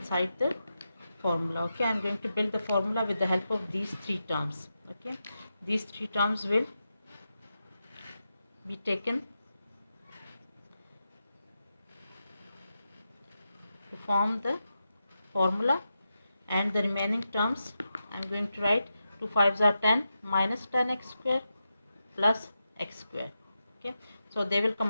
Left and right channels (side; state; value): both; inverted; correlation -0.89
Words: the formula. Okay, I'm going to build the formula with the help of these three terms. Okay, these three terms will be taken to form the formula, and the remaining terms I'm going to write 2 5s are 10 minus 10x square plus x square. Okay, so they will